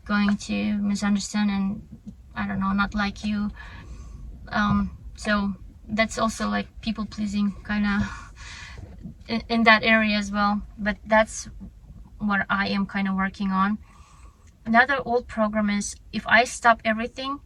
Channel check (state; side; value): identical; both; correlation 1.00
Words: going to misunderstand and, I don't know, not like you. So that's also like people pleasing kind of in that area as well, but that's what I am kind of working on. Another old program is, if I stop everything,